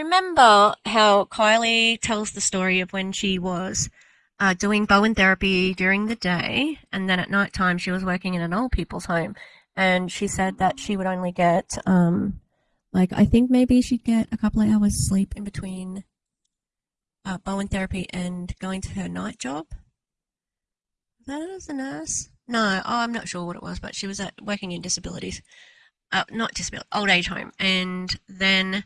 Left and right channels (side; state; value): both; identical; correlation 1.00